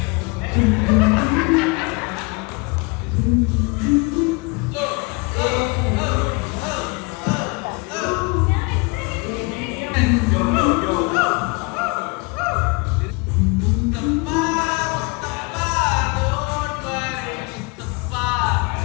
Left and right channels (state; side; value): quieter; right; 29.0 dB